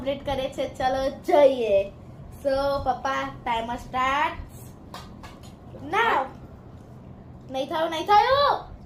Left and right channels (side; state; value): both; identical; correlation 1.00